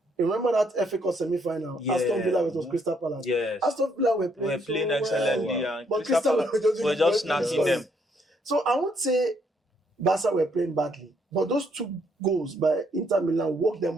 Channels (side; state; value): both; normal; correlation 0.71